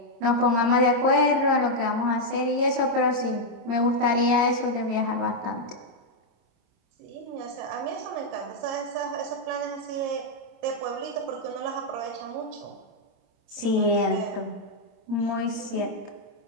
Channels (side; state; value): left; late; 26 ms